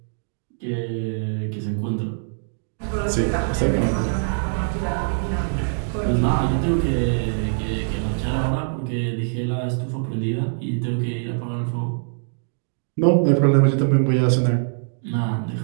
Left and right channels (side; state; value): left; silent; digital silence